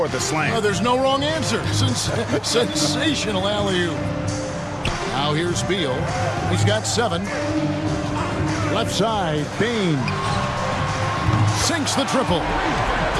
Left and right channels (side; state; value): both; identical; correlation 1.00